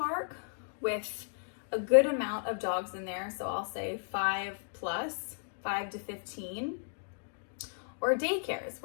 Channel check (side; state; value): right; silent; digital silence